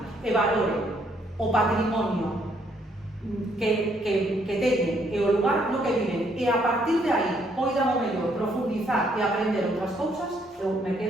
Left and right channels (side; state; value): both; normal; correlation 0.70